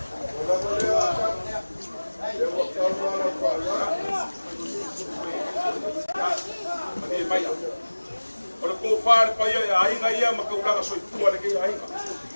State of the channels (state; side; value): inverted; both; correlation -1.00